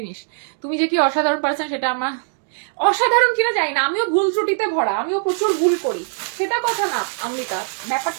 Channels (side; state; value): left; silent; digital silence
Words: নিস। তুমি যে কি অসাধারণ পারছেন সেটা আমার, অসাধারণ কিনা জানি না, আমিও ভুল ত্রুটিতে ভরা, আমিও প্রচুর ভুল করি, সেটা কথা না অমৃতা।